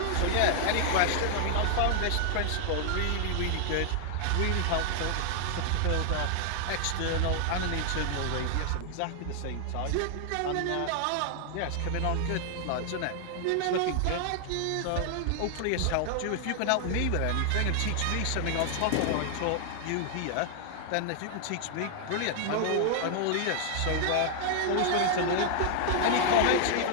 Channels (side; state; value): both; different; correlation 0.00